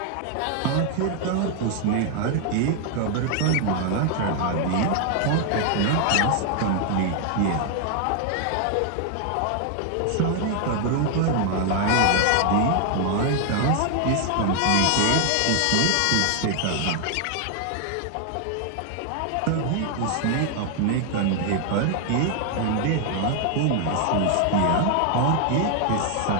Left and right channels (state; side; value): different; both; correlation 0.00